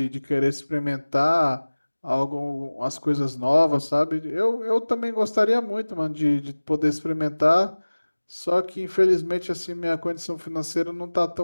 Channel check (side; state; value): both; inverted; correlation -1.00